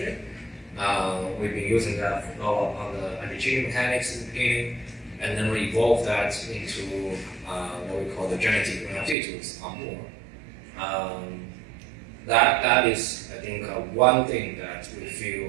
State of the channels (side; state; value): left; drops out; at 9.2 s